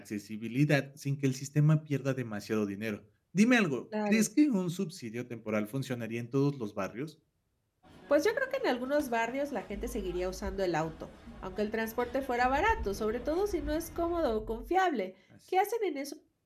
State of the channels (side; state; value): both; identical; correlation 1.00